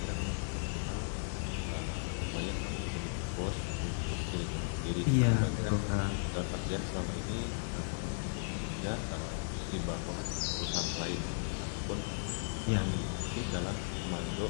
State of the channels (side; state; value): right; silent; digital silence